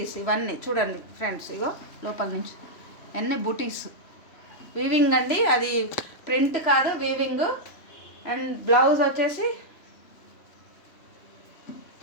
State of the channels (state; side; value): late; right; 3.0 ms